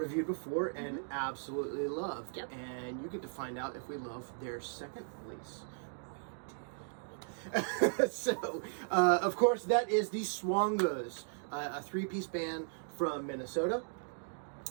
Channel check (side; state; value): left; silent; digital silence